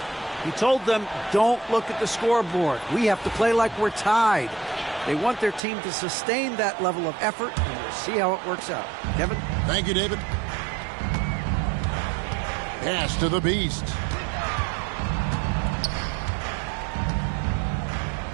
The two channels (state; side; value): drops out; left; at 5.6 s